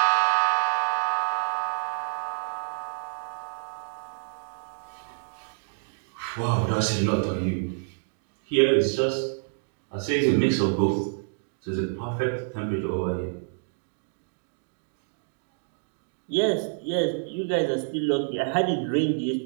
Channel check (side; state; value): left; silent; digital silence